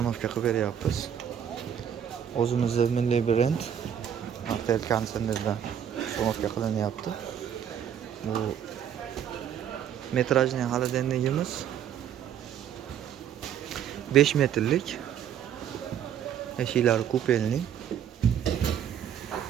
qilib beryapmiz. O'zimizning milliy brend Martel konsernidan ustanovka qilinyapti. Bu metrajli xolodilnigimiz 5 metrlik, eshiklari kupenli,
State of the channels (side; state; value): left; quieter; 9.2 dB